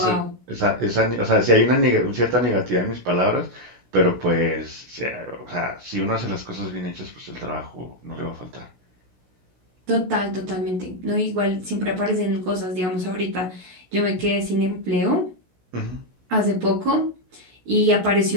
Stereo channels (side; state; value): left; late; 16 ms